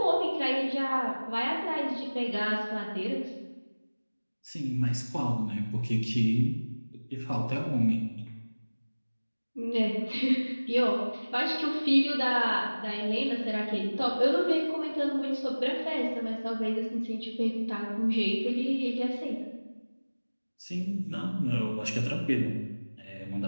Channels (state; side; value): inverted; both; correlation -1.00